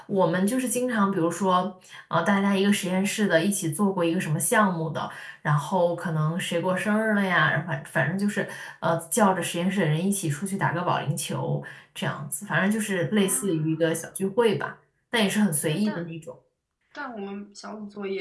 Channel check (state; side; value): identical; both; correlation 1.00